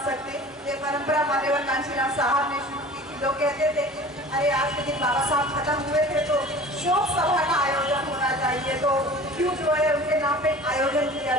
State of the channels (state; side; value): normal; both; correlation 0.42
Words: सकते। ये परंपरा मान्यवर कांशीराम साहब ने शुरू की थी। लोग कहते थे अरे आज के दिन बाबा साहब खत्म हुए थे तो शोक सभा का आयोजन होना चाहिए, तो क्यों जो है उनके नाम पे आयोजन किया